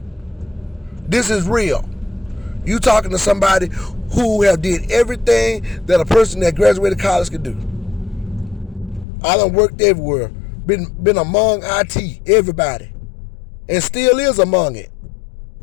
This is real. You talking to somebody who have did everything that a person that graduated college could do. I done worked everywhere. Been among IT, everybody. And still is among it.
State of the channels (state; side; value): drops out; right; at 9.1 s